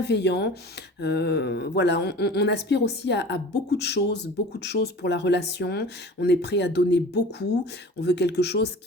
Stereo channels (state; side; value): normal; both; correlation 0.40